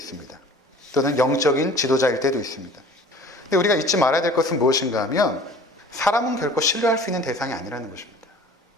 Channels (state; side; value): normal; both; correlation 0.46